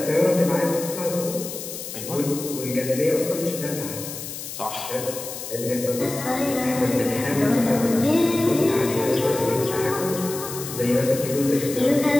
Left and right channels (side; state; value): left; noise; hiss, 9 dB below the sound